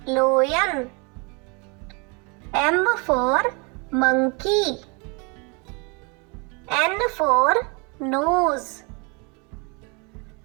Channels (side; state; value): left; quieter; 32.0 dB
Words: lion. M for monkey. N for nose.